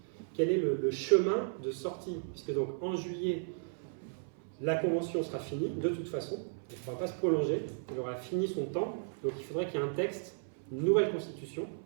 Quel est le chemin de sortie? Puisque donc, en juillet, la Convention sera finie, de toute façon. Elle ne pourra pas se prolonger. Elle aura fini son temps. Donc, il faudrait qu'il y ait un texte, une nouvelle constitution,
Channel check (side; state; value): left; silent; 55 dB below the other